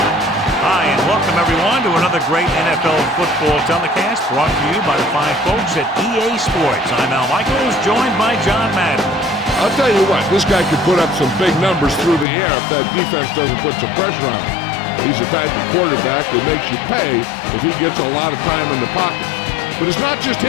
Hi, and welcome everyone to another great NFL football telecast brought to you by the fine folks at EA Sports. I'm Al Michaels, joined by John Madden. I'll tell you what, this guy could put up some big numbers through the air if that defense doesn't put some pressure on him. He's the type of quarterback that makes you pay if he gets a lot of time in the pocket. But it's not just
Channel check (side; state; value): right; drops out; at 12.2 s